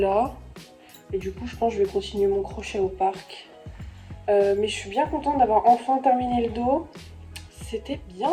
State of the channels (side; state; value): both; identical; correlation 1.00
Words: Et du coup je pense que je vais continuer mon crochet au parc. Mais je suis bien contente d'avoir enfin terminé le dos. C'était bien